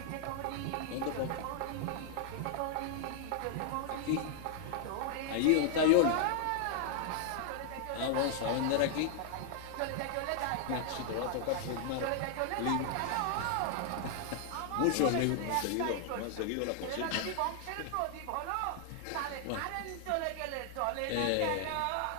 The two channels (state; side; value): different; both; correlation 0.00